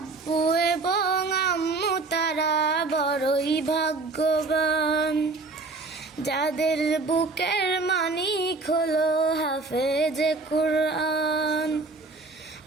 এবং আম্মু তারা বড়ই ভাগ্যবান, যাদের বুকের মানিক হলো হাফেজে কুরআন।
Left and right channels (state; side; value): quieter; left; 3.7 dB